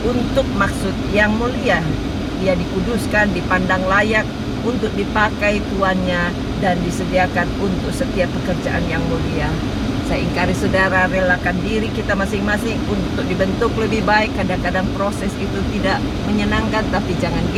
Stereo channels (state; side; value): identical; both; correlation 1.00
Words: untuk maksud yang mulia. Ia dikuduskan, dipandang layak untuk dipakai tuannya, dan disediakan untuk setiap pekerjaan yang mulia. Saya ingkari saudara, relakan diri kita masing-masing untuk dibentuk lebih baik. Kadang-kadang proses itu tidak menyenangkan, tapi jangan